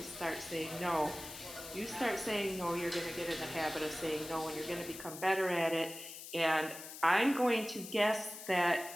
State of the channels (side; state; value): left; noise; hiss, 12 dB below the sound